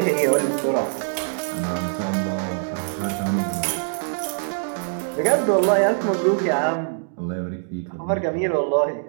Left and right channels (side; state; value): left; silent; digital silence